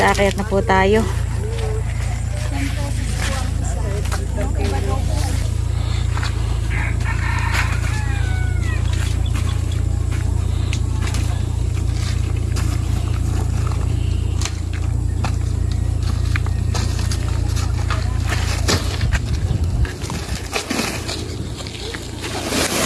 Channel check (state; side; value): identical; both; correlation 1.00